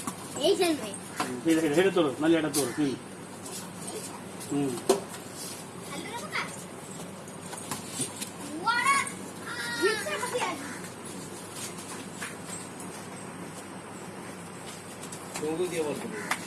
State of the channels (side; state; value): both; identical; correlation 1.00